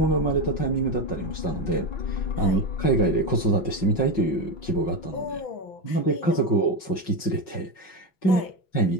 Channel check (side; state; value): right; late; 5.4 ms